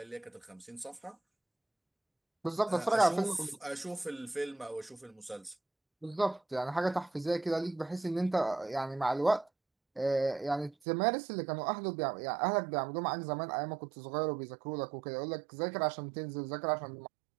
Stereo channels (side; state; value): left; drops out; at 10.8 s